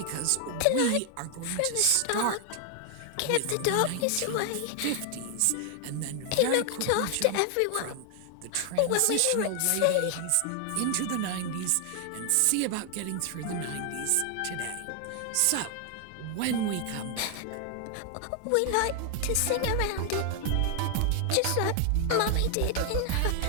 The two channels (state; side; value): different; both; correlation 0.00